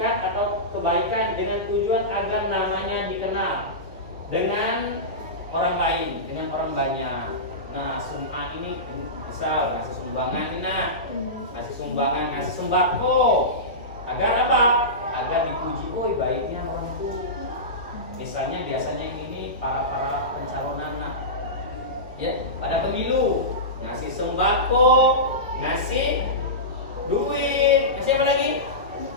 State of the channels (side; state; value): both; normal; correlation -0.18